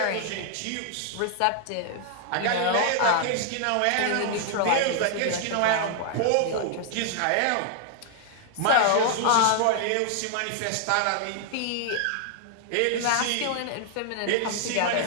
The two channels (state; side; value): different; both; correlation 0.00